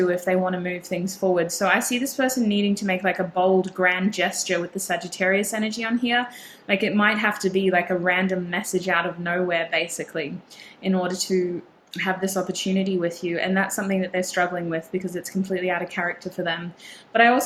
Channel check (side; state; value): both; identical; correlation 1.00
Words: if they want to move things forward. So I see this person needing to make like a bold, grand gesture with the Sagittarius energy on here. Like it might have to be like a random message out of nowhere, basically, in order to have this opportunity with you. And that's something that they're struggling with because it's completely out of character for them. But I